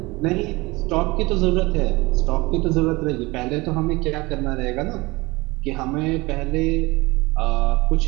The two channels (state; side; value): quieter; left; 22.9 dB